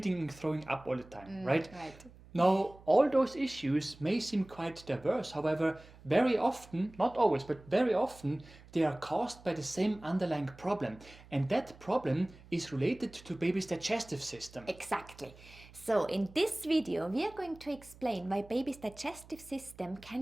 and throwing up all the time, right? Right. Now, all those issues may seem quite diverse. However, very often, not always, but very often, they are caused by the same underlying problem. And that problem is related to baby's digestive system. Exactly. So in this video, we are going to explain why baby's digestive system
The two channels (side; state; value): right; noise; hum, 22 dB below the sound